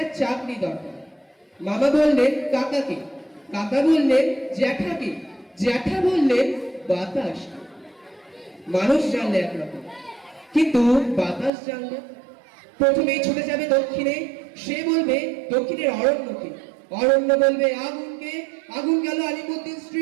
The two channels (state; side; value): drops out; left; at 11.5 s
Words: চাকরি দরকার। মামা বললেন কাকাকে, কাকা বললেন জ্যাঠাকে, জ্যাঠা বললেন বাতাস। মানুষ জানলে একরকম, কিন্তু বাতাস জানলে প্রথমেই ছুটে যাবে দক্ষিণে, সে বলবে দক্ষিণের অরণ্যকে, অরণ্য বলবে আগুনকে, আগুন গেল আলিমুদ্দিন